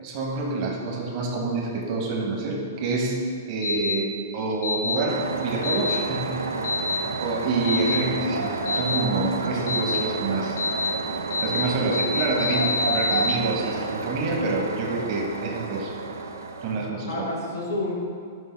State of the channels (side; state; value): both; inverted; correlation -0.37